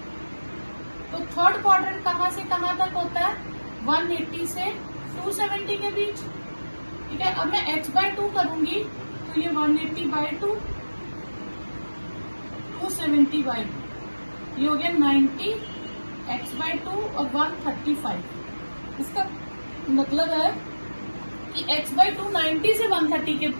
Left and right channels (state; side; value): inverted; both; correlation -1.00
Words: तो थर्ड क्वाड्रेंट कहाँ से कहाँ तक होता है? 180 से 270 के बीच, ठीक है। अब मैं x/2 करूंगी, तो ये 180/2, 270/2, ये हो गया 90, x/2 और 135। इसका मतलब है कि x/2 90 से